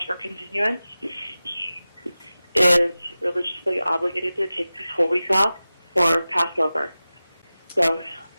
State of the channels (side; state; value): both; inverted; correlation -0.96